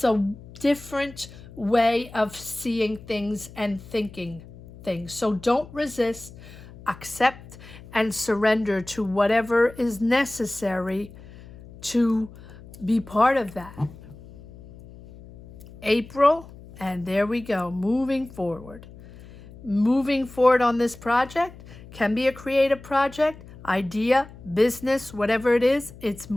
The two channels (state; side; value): noise; left; hum, 18 dB below the sound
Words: a different way of seeing things and thinking things. So don't resist, accept and surrender to whatever is necessary to be part of that. April, and there we go, moving forward. Moving forward on this project, can be a creative project, idea, business, whatever it is, it's